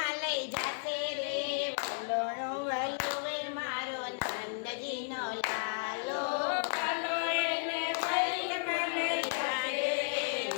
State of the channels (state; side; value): silent; right; digital silence